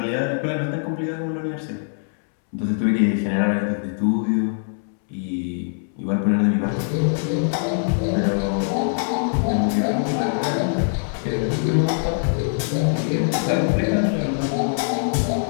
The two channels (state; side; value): silent; right; 64 dB below the other